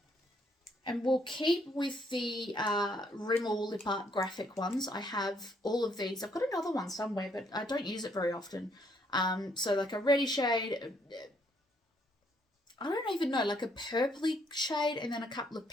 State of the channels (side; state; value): both; normal; correlation 0.70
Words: And we'll keep with the Rimmel Lip Art Graphic ones. I have all of these. I've got another one somewhere, but I don't use it very often. So like a reddy shade, I don't even know, like a purpley shade, and then a couple of